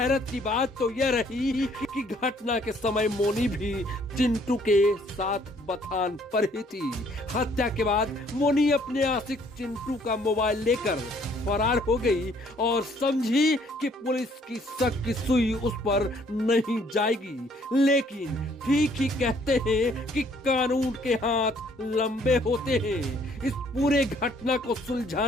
की बात तो यह रही कि घटना के समय मोनी भी चिंटू के साथ बथान पर ही थी। हत्या के बाद मोनी अपने आशिक चिंटू का मोबाइल लेकर फरार हो गई और समझी कि पुलिस की शक की सुई उस पर नहीं जाएगी। लेकिन ठीक ही कहते हैं कि कानून के हाथ लंबे होते हैं। इस पूरे घटना को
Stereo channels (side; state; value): both; normal; correlation 0.63